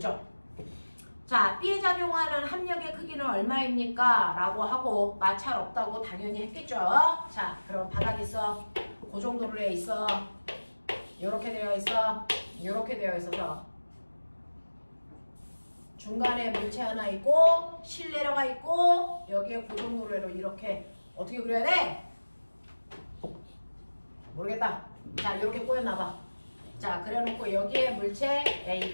자, B에 작용하는 합력의 크기는 얼마입니까? 라고 하고 마찰 없다고 당연히 했겠죠. 자, 그럼 바닥 있어. 그 정도로 해 있어. 이렇게 되어 있어. 이렇게 되어 있어서 중간에 물체 하나 있고 실내려가 있고 여기에 고정도로로 이렇게 어떻게 그려야 돼? 모르겠다. 자, 이렇게 꼬여놔봐. 자, 그래놓고 여기에 물체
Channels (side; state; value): both; inverted; correlation -1.00